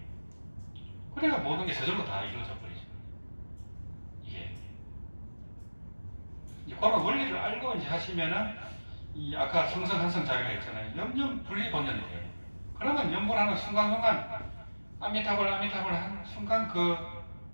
그래야 모든 게 저절로 다 이루어져 버리죠. 이게. 이제 그런 원리를 알고 이제 하시면은 이 아까 성성한성 자기가 있잖아요. 염염 분리본전이 돼요. 그러면 염불하는 순간순간 아미타불 한 순간 그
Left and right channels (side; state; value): both; inverted; correlation -1.00